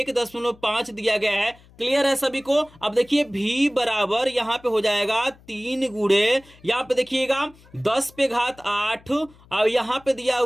दिया गया है। क्लियर है सभी को। अब देखिए V बराबर यहाँ पे हो जाएगा 3 × यहाँ पे देखिएगा 10⁸, और यहाँ पे दिया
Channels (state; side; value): noise; left; hum, 26 dB below the sound